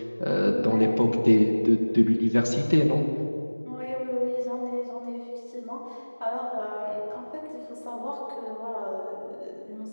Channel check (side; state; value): both; inverted; correlation -1.00